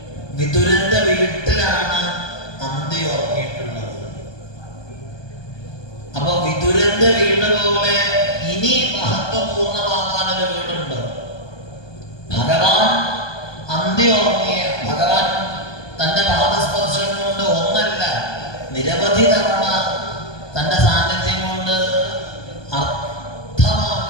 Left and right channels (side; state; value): right; late; 1.2 ms